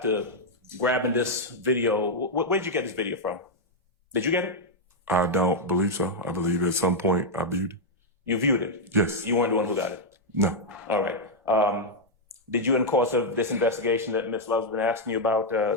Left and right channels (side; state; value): both; normal; correlation -0.03